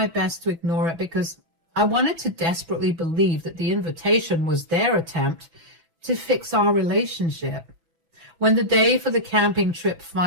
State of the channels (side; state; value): left; late; 6.0 ms